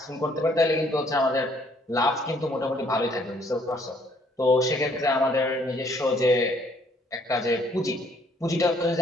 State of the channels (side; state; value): both; normal; correlation 0.64